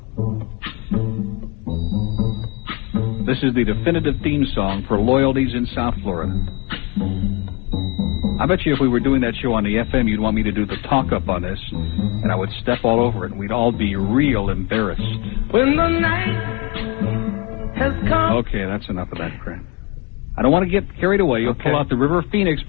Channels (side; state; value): right; quieter; 25.9 dB